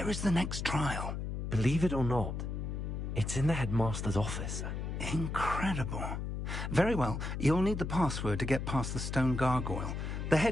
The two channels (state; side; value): noise; left; hum, 4 dB below the sound